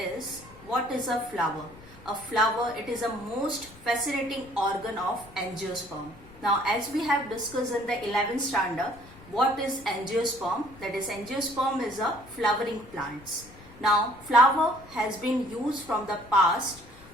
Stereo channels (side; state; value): left; noise; rumble, 21 dB below the sound